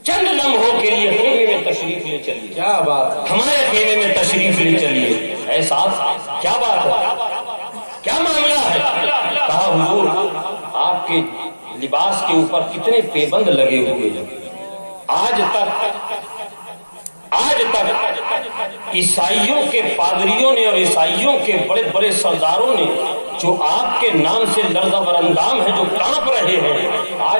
خیمے میں تشریف لے چلیے. کیا بات ہے، ہمارے خیمے میں تشریف لے چلیے. اے سعد کیا بات ہے، کیا معاملہ ہے؟ کہا حضور آپ کے لباس کے اوپر کتنے پیبند لگے ہوئے ہیں. آج تک عیسائیوں کے پادریوں نے اور عیسائیوں کے بڑے بڑے سرداروں نے جو آپ کے نام سے لرزہ براندام ہیں، جو کانپ رہے ہیں،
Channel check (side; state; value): both; inverted; correlation -1.00